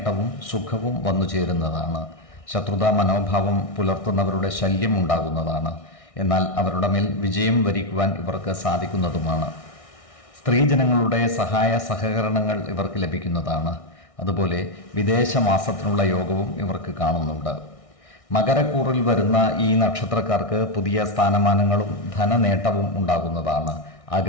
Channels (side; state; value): right; late; 1.6 ms